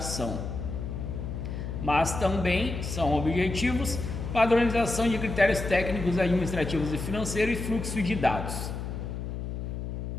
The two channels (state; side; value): noise; left; hum, 5 dB below the sound